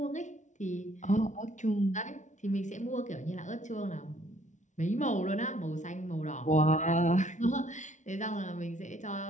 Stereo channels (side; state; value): right; late; 0.36 ms